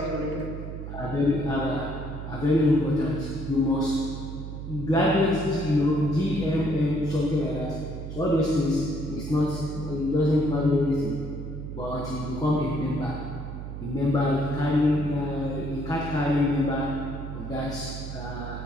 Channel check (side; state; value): right; noise; hum, 8 dB below the sound